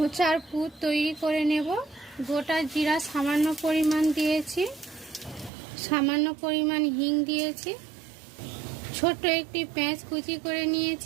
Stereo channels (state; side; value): drops out; left; at 5.5 s